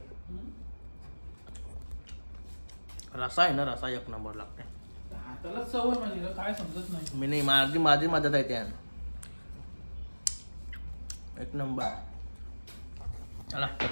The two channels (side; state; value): both; inverted; correlation -1.00